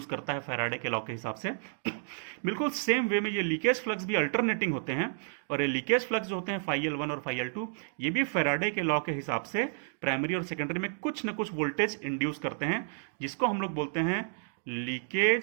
करता है फैराडे के लॉ के हिसाब से। बिल्कुल सेम वे में ये लीकेज फ्लक्स भी अल्टरनेटिंग होते हैं और ये लीकेज फ्लक्स जो होते हैं φL1 और φL2, ये भी फैराडे के लॉ के हिसाब से प्राइमरी और सेकेंडरी में कुछ न कुछ वोल्टेज इंड्यूस करते हैं, जिसको हम लोग बोलते हैं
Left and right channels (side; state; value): left; silent; digital silence